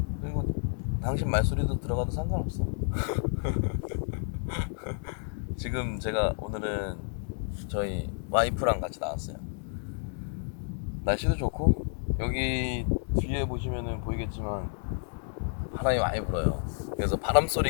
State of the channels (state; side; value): silent; right; 58 dB below the other